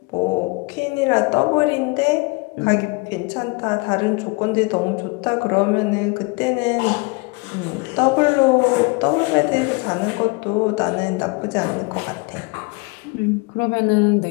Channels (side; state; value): right; quieter; 28.1 dB